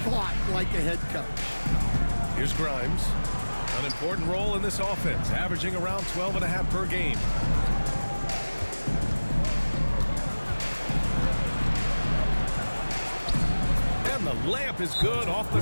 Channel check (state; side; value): inverted; both; correlation -1.00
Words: thought like a head coach. Here's Grimes. An important role in this offense, averaging around 12.5 per game. And the layup is good off the